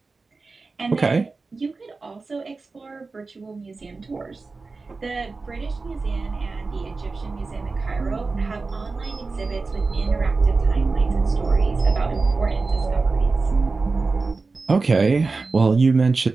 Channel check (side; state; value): left; quieter; 4.0 dB